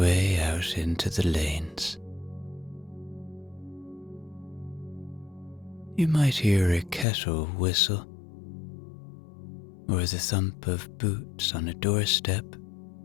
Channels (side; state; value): right; drops out; at 7.1 s